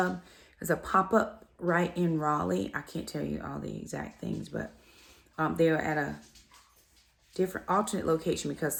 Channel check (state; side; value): identical; both; correlation 1.00